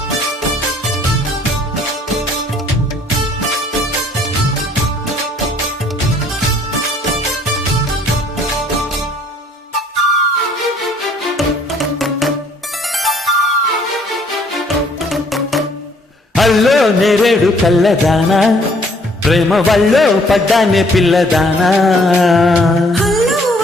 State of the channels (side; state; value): both; normal; correlation 0.61